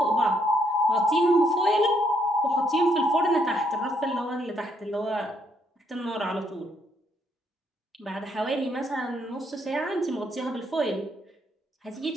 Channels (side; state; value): both; normal; correlation 0.73